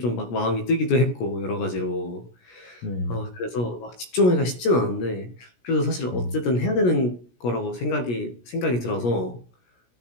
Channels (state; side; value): late; right; 17 ms